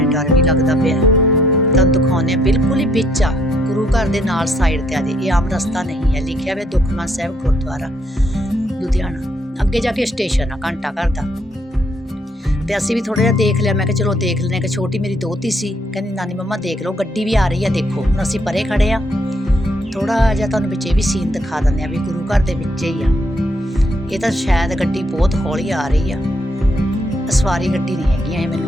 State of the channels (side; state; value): both; normal; correlation 0.71